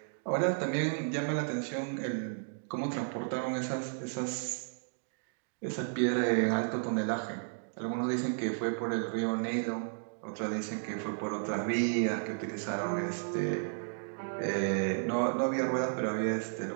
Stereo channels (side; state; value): left; silent; digital silence